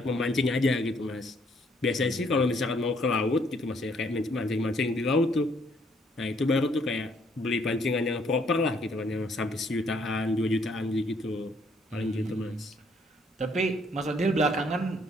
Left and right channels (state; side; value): normal; both; correlation 0.67